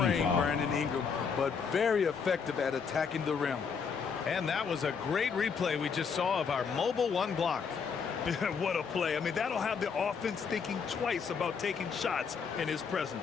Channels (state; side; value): quieter; right; 6.0 dB